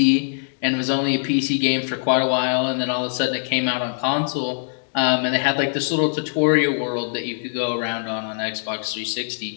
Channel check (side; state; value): right; silent; digital silence